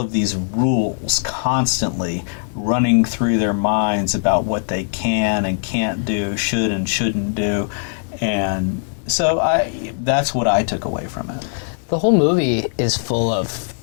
these rules constantly running through their minds about what they can and can't do, should and shouldn't do. And so that's what I took away from it. The whole movie is full of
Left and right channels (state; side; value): silent; right; digital silence